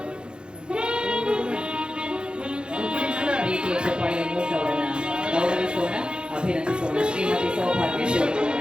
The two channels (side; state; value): left; late; 0.051 ms